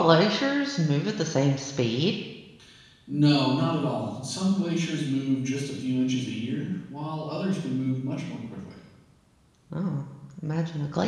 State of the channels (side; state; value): both; identical; correlation 1.00